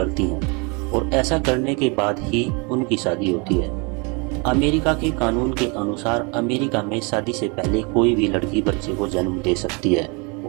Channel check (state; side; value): quieter; left; 31.6 dB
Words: हैं, और ऐसा करने के बाद ही उनकी शादी होती है। अमेरिका के कानून के अनुसार अमेरिका में शादी से पहले कोई भी लड़की बच्चे को जन्म दे सकती है,